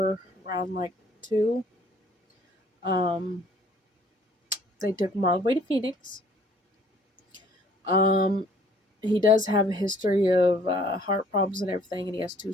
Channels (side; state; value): both; normal; correlation 0.58